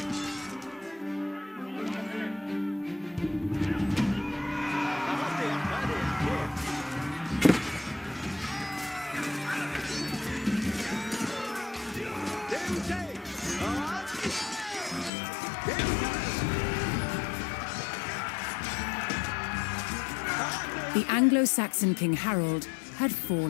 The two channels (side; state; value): right; drops out; at 15.1 s